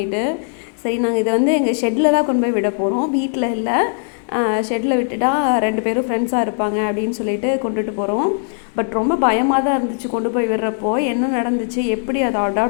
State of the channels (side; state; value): right; silent; digital silence